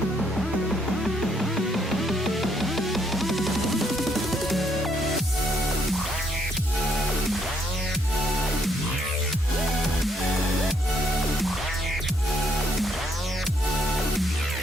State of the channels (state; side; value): normal; both; correlation 0.71